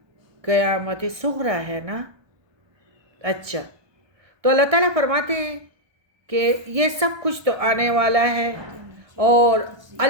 قیامت صغریٰ ہے نا. اچھا، تو اللہ تعالیٰ فرماتے ہیں کہ یہ سب کچھ تو آنے والا ہے اور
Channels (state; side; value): late; left; 1.2 ms